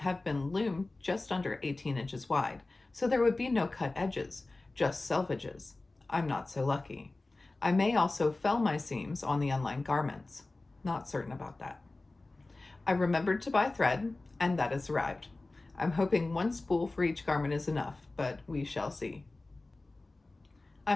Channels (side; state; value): right; quieter; 3.1 dB